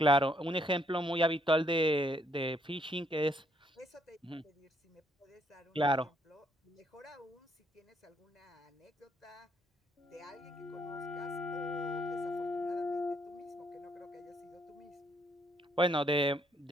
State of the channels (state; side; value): normal; both; correlation 0.70